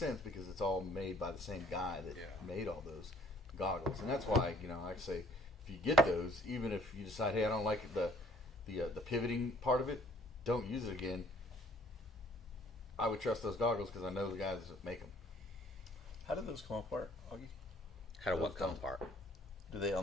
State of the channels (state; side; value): normal; both; correlation 0.59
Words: because it's all made by the same guy that made all those goggles, and that's why I say if you get those, even if you decide, hey, I don't like the pivoting part of it, don't use it again. I would trust those goggles because I know the guys that make them. How do those come apart, Augie? How do what come apart? Do they